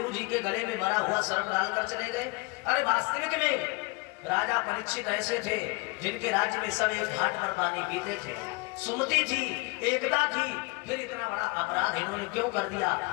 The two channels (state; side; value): quieter; right; 27.5 dB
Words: जी के गले में मरा हुआ सर्प डालकर चले गए। अरे वास्तविक में राजा परीक्षित ऐसे थे जिनके राज्य में सब एक घाट पर पानी पीते थे, सुमति थी, एकता थी, फिर इतना बड़ा अपराध इन्होंने क्यों कर दिया?